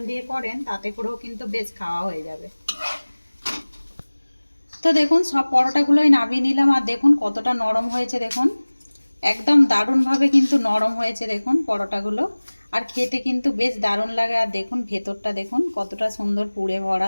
দিয়ে করেন তাতে করেও কিন্তু বেশ খাওয়া হয়ে যাবে। তো দেখুন সব পরোটাগুলোই নামিয়ে নিলাম আর দেখুন কতটা নরম হয়েছে দেখুন। একদম দারুণভাবে কিন্তু নরম হয়েছে দেখুন পরোটাগুলো। আর খেতে কিন্তু বেশ দারুণ লাগে। আর দেখুন ভেতরটা দেখুন কতটা সুন্দর পুড়ে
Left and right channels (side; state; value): both; inverted; correlation -1.00